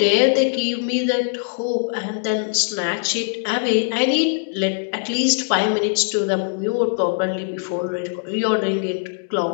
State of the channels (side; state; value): right; silent; digital silence